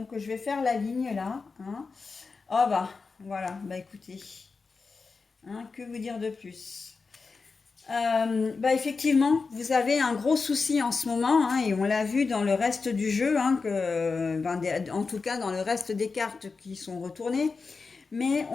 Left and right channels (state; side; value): quieter; right; 4.5 dB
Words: je vais faire la ligne là, hein. Oh bah voilà, bah écoutez, hein, que vous dire de plus? Bah effectivement, vous avez un gros souci en ce moment, hein, et on l'a vu dans le reste du jeu, hein, ben, en tout cas dans le reste des cartes qui sont retournées. Mais